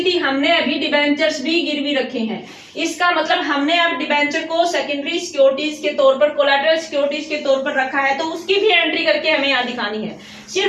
थी, हमने अभी डिबेंचर्स भी गिरवी रखे हैं। इसका मतलब हमने अब डिबेंचर को सेकेंडरी सिक्योरिटीज के तौर पर, कोलैटरल सिक्योरिटीज के तौर पर रखा है, तो उसकी भी एंट्री करके हमें यहाँ दिखानी है।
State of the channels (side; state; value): both; identical; correlation 1.00